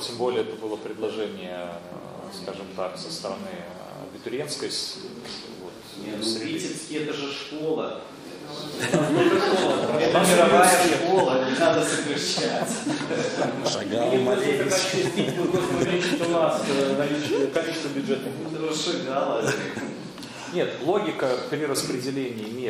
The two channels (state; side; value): identical; both; correlation 1.00